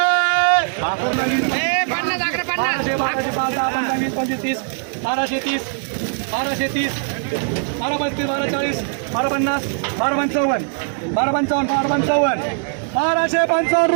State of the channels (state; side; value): silent; left; 63 dB below the other